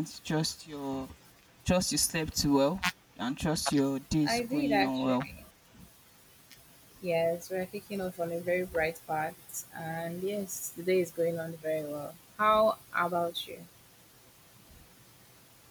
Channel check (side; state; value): both; identical; correlation 1.00